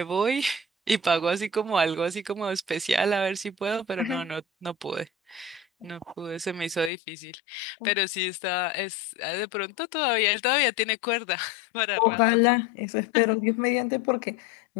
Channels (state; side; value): drops out; right; at 6.9 s